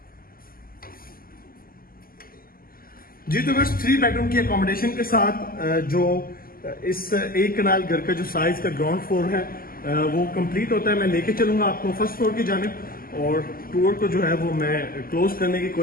जी तो बस 3 बेडरूम की अकोमोडेशन के साथ जो इस एक कनाल घर का जो साइज का ग्राउंड फ्लोर है वो कंप्लीट होता है। मैं लेके चलूंगा आपको फर्स्ट फ्लोर की जानिब, और टूर को जो है वो मैं क्लोज करने की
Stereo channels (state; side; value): late; right; 0.42 ms